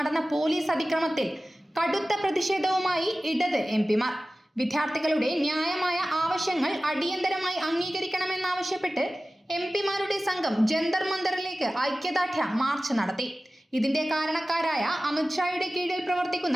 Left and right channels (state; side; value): normal; both; correlation 0.96